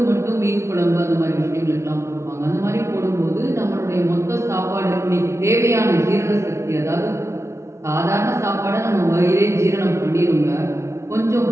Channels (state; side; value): late; left; 0.13 ms